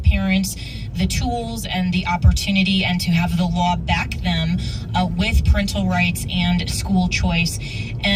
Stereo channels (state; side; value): identical; both; correlation 1.00